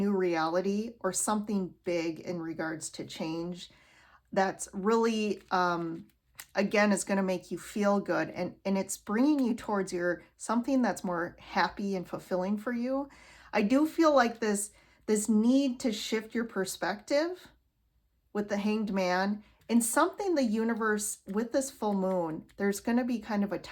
reality or something big in regards to change that's really, again, is going to make you feel good. And it's bringing you towards your something that's more happy and fulfilling for you. I do feel like this need to shift your perspective with the Hanged Man. In something, the universe, with this full moon, there's going to be kind of a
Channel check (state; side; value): identical; both; correlation 1.00